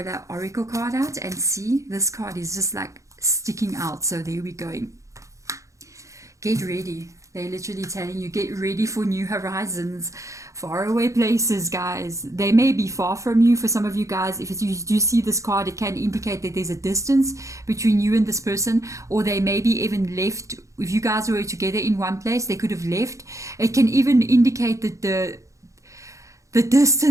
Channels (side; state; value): left; late; 0.15 ms